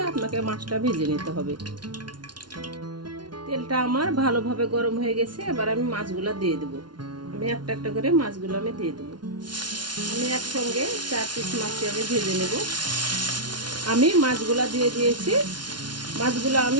আপনাকে মাছটা ভেজে নিতে হবে। তেলটা আমার ভালোভাবে গরম হয়ে গেছে। এবার আমি মাছগুলো দিয়ে দেব। আমি একটা একটা করে মাছগুলো আমি দিয়ে দেব। আমি একসঙ্গে 4 পিস মাছ আমি ভেজে নেব। আমি মাছগুলো দিয়ে দিয়েছি। মাছগুলো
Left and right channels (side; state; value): left; late; 0.70 ms